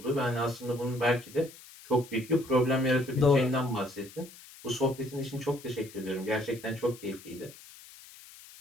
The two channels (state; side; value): noise; left; hiss, 19 dB below the sound